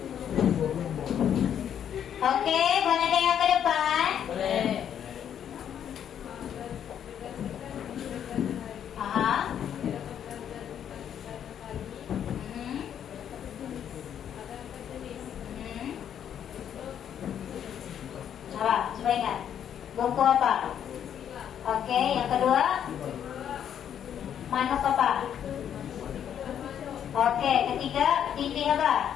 Oke, boleh tengok ke depan? Boleh. Coba ingat. Buku apa? Oke, yang kedua manuk apa? Oke, ketiga titik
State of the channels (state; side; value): quieter; right; 9.3 dB